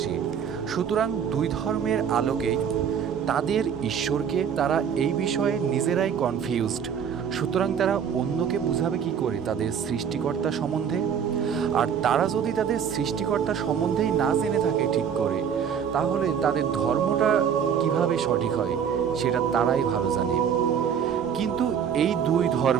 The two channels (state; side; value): quieter; left; 7.8 dB